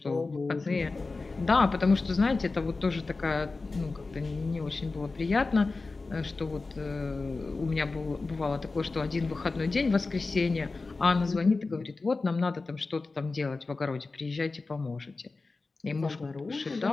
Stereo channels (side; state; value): right; quieter; 3.7 dB